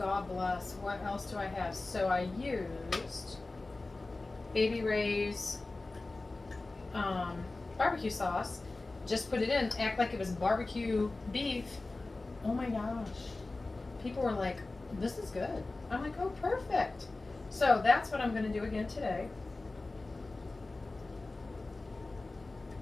bless, what else do I have? So I used Baby Ray's barbecue sauce, just put it in, act like it was barbecue beef. Oh my gosh. People were like, this is good. I'm like, oh perfect. So that's what I'm gonna do again today.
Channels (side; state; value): right; quieter; 3.2 dB